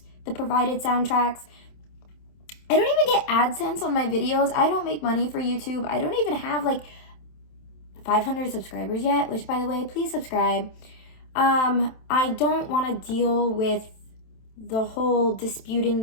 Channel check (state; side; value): late; right; 27 ms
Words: the provided soundtracks. I don't even get AdSense on my videos. I don't make money for YouTube. I don't even have like 500 subscribers yet, which by the way, please subscribe. I don't want to deal with the whole disputing